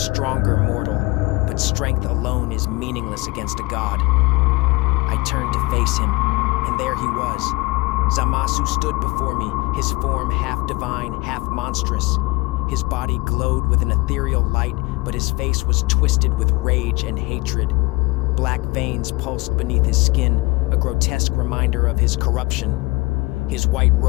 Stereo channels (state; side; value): quieter; right; 23.4 dB